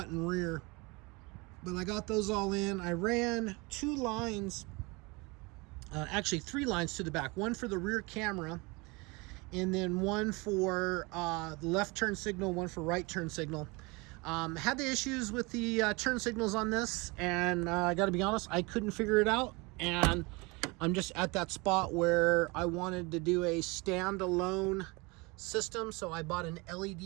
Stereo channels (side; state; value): left; quieter; 26.4 dB